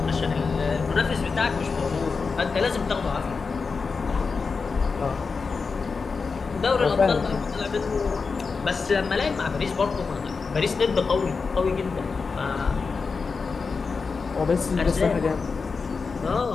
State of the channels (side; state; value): right; quieter; 4.8 dB